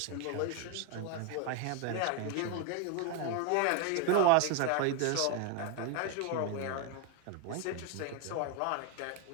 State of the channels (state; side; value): different; both; correlation 0.02